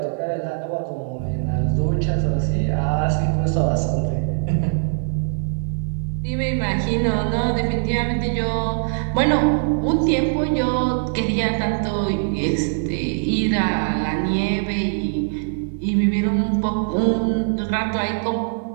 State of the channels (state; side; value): silent; left; 61 dB below the other